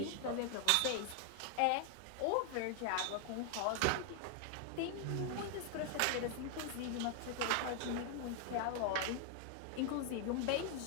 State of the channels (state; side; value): different; both; correlation 0.00